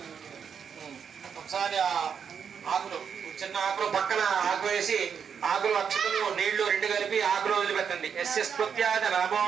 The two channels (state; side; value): quieter; left; 7.1 dB